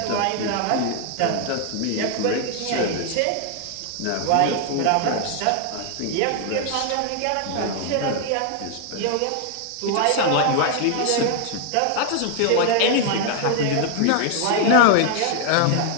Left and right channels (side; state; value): both; different; correlation 0.00